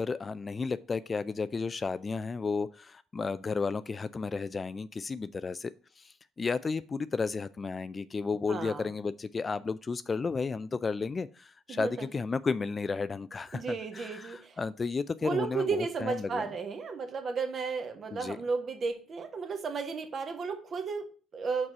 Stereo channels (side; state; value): both; normal; correlation 0.85